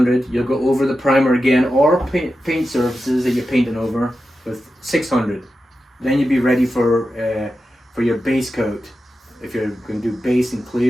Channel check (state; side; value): normal; both; correlation 0.91